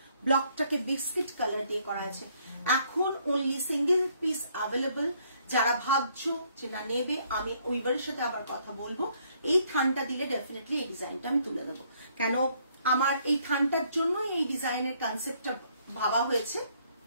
ব্লকটাকে বিস্কিট কালার দিয়ে করা হয়েছে। এখন অনলি সিঙ্গেল পিস অ্যাভেলেবল, যারা ভাবছো যে না নেবে, আমি উইভারের সাথে আবার কথা বলবো, এই থানটা দিলে ডেফিনেটলি এই ডিজাইনটা আমি তুলে দেবো, কেন আমার এই থানটার জন্য এই ডিজাইনের কনসেপ্টটা ভাবা হয়েছে।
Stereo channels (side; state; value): both; inverted; correlation -0.67